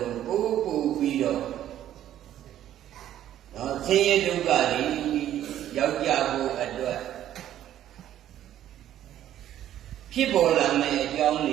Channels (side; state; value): left; quieter; 11.8 dB